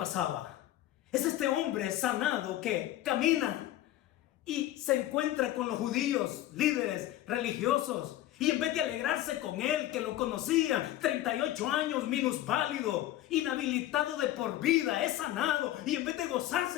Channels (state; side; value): quieter; right; 14.2 dB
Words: Es este hombre sanado que camina y se encuentra con los judíos, líderes religiosos. Y en vez de alegrarse con él, que lo conocía, 38 años, minusválido, inhabilitado de por vida, es sanado. Y en vez de